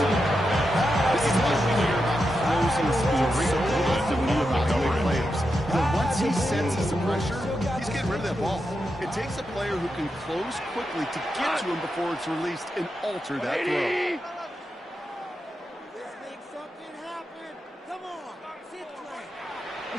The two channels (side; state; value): both; normal; correlation 0.87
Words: This is what we hear about closing speed so often when you evaluate players. But once he senses the pressure, he's getting rid of that ball. It takes a player who can close quickly to get to him before it's released and alter that throw.